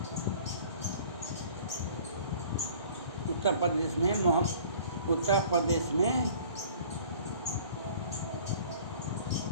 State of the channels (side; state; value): both; inverted; correlation -0.49